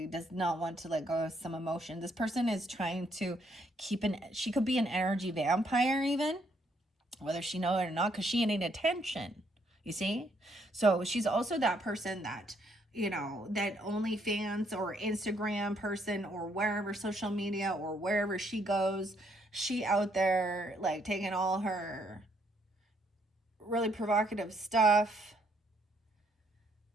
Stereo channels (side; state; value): both; normal; correlation 0.71